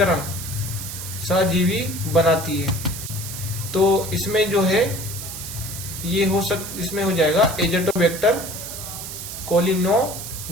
सहजीवी बनाती है? तो इसमें जो है ये इसमें हो जाएगा एजेटोबैक्टर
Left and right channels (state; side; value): noise; right; hiss, 8 dB below the sound